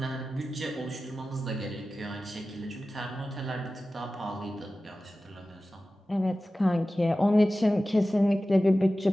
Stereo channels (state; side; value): normal; both; correlation 0.95